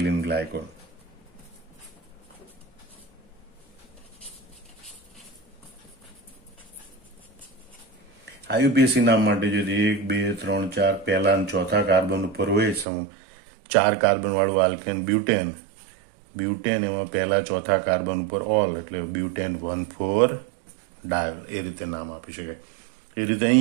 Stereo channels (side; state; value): left; drops out; at 12.9 s